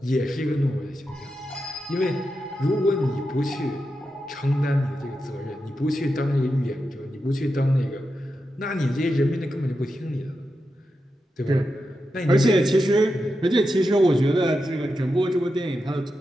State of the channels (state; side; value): normal; both; correlation 0.88